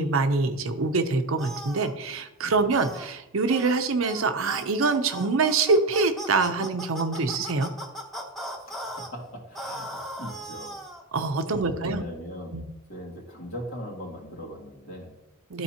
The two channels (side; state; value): left; quieter; 3.2 dB